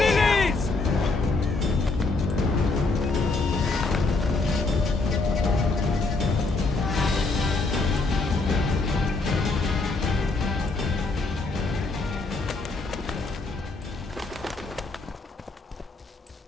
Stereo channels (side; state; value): right; quieter; 3.6 dB